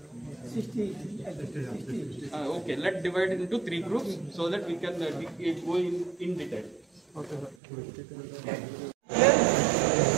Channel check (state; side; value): drops out; left; at 7.6 s